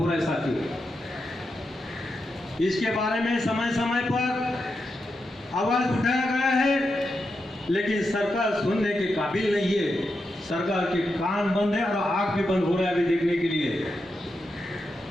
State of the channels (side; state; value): both; normal; correlation 0.86